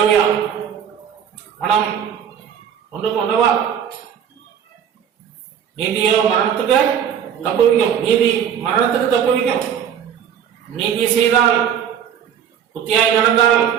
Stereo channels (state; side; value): quieter; left; 8.7 dB